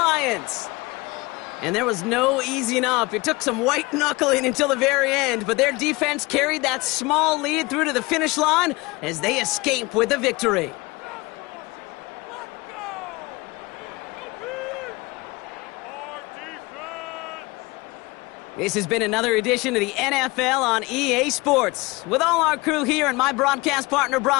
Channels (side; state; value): right; quieter; 23.5 dB